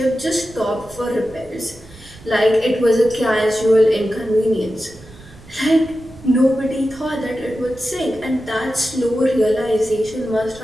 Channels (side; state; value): right; noise; rumble, 21 dB below the sound